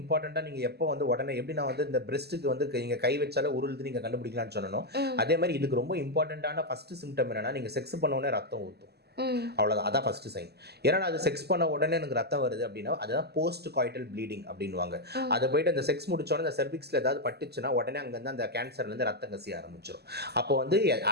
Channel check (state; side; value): late; left; 0.47 ms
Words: நீங்கள் எப்போ வந்து உடனே எப்படி நான் வந்து இந்த பிரெஸ்ட்டுக்கு வந்து நீங்கள் கை வச்சாலே உருளுது நீங்கள் கண்டுபிடிக்கலாம்னு சொன்னோம், அதே மாதிரி இதுக்கு ரொம்ப இம்பார்ட்டண்ட்டான ஃபஸ்ட்டு சிம்டம் என்னன்னா, நீங்கள் செக்ஸ் பண்ண உடனே ரத்தம் ஊற்றும், அவ்வளோதான், அதான் ஃபஸ்ட்டு சைன். ஏன்னா அது செக்ஸ் பண்ண உடனே எனக்கு ரத்தம் வருது அப்படின்னா அதுதான் போஸ்ட் காய்டல் ப்ளீடிங் அப்படின்வாங்க. அதை போயிட்டு அந்த செக்ஸ் முடிச்சோடனே இந்த செர்விக்ஸில் ஏதாவது பட்டுச்சுன்னா உடனே அங்கேருந்து அந்த கேன்சர்லேருந்து ரத்தம் கசிய ஆரம்பிச்சிடும். அப்போ வந்து